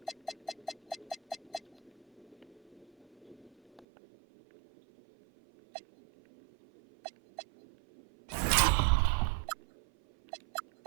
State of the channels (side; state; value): left; drops out; at 3.9 s